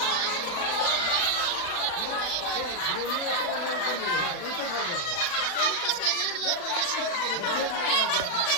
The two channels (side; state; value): right; late; 40 ms